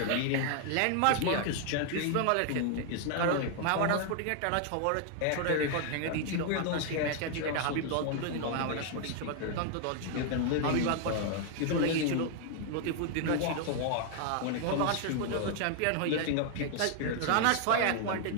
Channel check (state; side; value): different; both; correlation 0.00